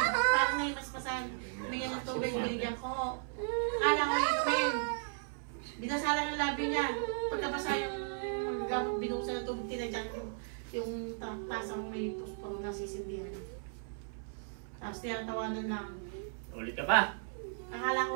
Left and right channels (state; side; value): silent; left; 54 dB below the other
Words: may maspasan. Humingi ng tubig, binigyan ko. Kala ko inumin. Binasalan ng labi niya. Pagkabasa yung gamot binuksan ng tubig, tinadyak yung tasang may pusporo na sisindihan. Tapos tinatawanan lang. Ulit ka pa? Akala